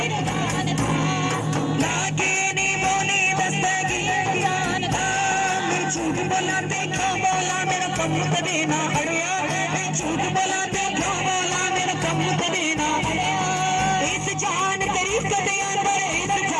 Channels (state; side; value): identical; both; correlation 1.00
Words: जानदा लागे नी भोली दस्तगीर जानदा मैं झूठ बोला देखो बोला मेरा कम कदे ना अड़िया मैं झूठ बोला देखो बोला मेरा कम कदे ना अड़िया इस जान तेरी कदे अंदर इस